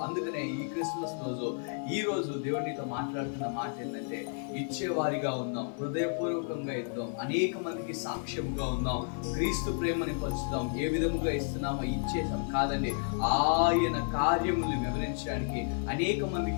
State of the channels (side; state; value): right; silent; 57 dB below the other